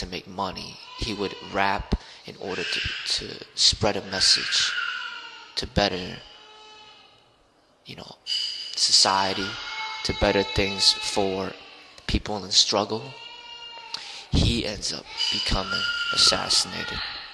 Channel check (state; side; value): identical; both; correlation 1.00